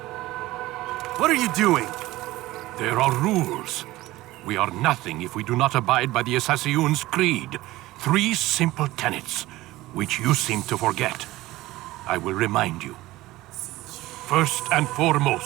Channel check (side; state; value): left; quieter; 17.8 dB